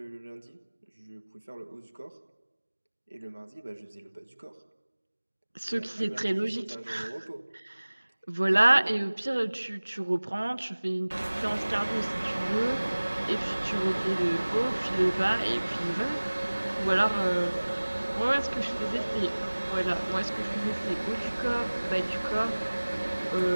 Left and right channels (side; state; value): both; inverted; correlation -1.00